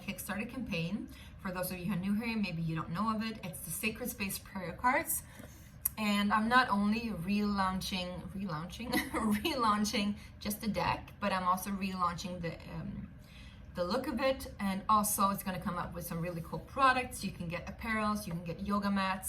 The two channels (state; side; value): identical; both; correlation 1.00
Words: campaign. For those of you who are new here, maybe you don't know of it. It's the Sacred Space Prayer Cards. And I'm not only relaunching just the deck, but I'm also relaunching the look of it. And also it's going to come up with some really cool products. You can get apparels, you can get yoga